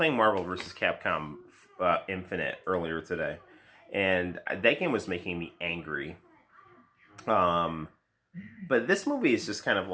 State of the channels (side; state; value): both; identical; correlation 1.00